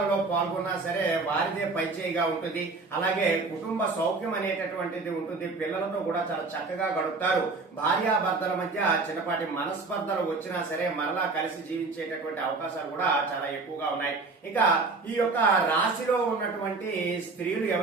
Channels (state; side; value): quieter; left; 3.8 dB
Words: పాల్గొన్నా సరే వారిదే పైచేయిగా ఉంటుంది. అలాగే కుటుంబ సౌఖ్యం అనేటటువంటిది ఉంటుంది. పిల్లలతో కూడా చాలా చక్కగా గడుపుతారు. భార్యాభర్తల మధ్య చిన్నపాటి మనస్పర్ధలు వచ్చినా సరే మరలా కలిసి జీవించేటటువంటి అవకాశాలు కూడా చాలా ఎక్కువగా ఉన్నాయి. ఇక ఈ యొక్క రాశిలో ఉన్నటువంటి స్త్రీలు